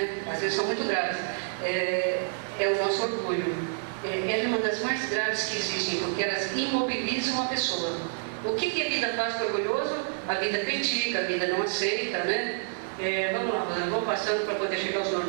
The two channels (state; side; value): silent; left; 57 dB below the other